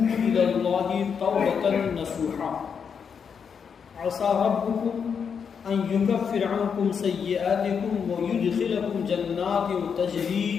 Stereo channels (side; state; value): right; quieter; 6.7 dB